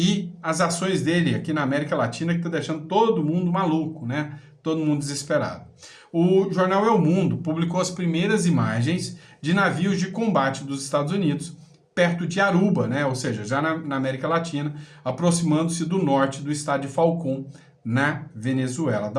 as ações dele aqui na América Latina, que está deixando todo mundo maluco, né? Todo mundo desesperado. O jornal El Mundo publicou as primeiras imagens de navios de combate dos Estados Unidos perto de Aruba, né? Ou seja, já na América Latina, aproximando-se do norte do estado de Falcón, na Venezuela.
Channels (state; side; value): identical; both; correlation 1.00